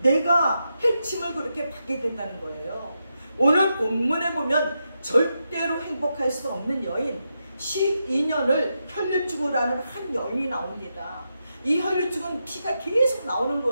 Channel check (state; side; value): inverted; both; correlation -0.86